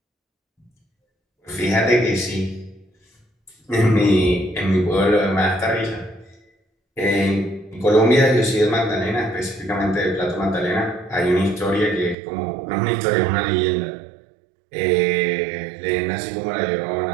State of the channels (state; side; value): drops out; left; at 12.2 s